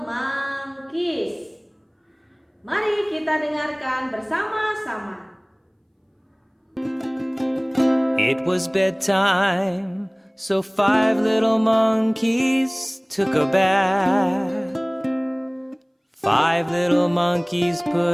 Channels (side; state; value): both; identical; correlation 1.00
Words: Monkeys. Mari kita dengarkan bersama-sama. It was bedtime, so 5 little monkeys took a bath. 5 little monkeys